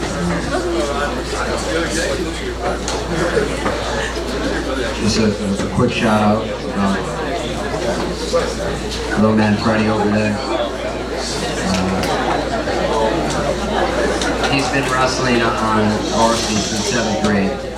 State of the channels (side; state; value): both; identical; correlation 1.00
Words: Just a quick shout out. Little man Freddie over there. He's been wrestling on varsity since 7th grade,